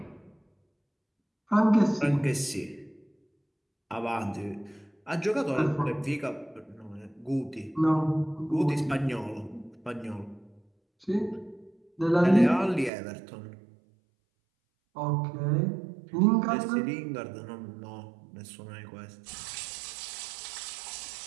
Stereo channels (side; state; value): left; drops out; at 12.9 s